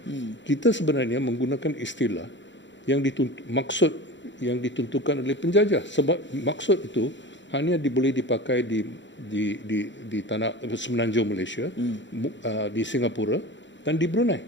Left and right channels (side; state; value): right; late; 0.54 ms